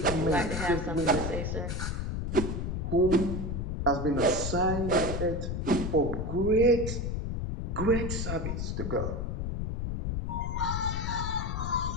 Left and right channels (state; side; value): noise; left; rumble, 2 dB below the sound